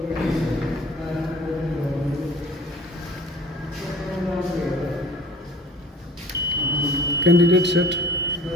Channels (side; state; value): both; normal; correlation 0.47